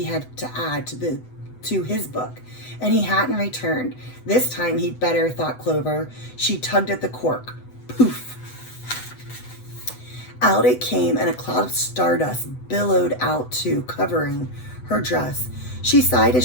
had to add to his book, and he hadn't returned. This time he'd better, thought Clover. She tugged at the cork. Poof! Out it came, and a cloud of stardust billowed out too, covering her dress. She sighed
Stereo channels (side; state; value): right; late; 8.0 ms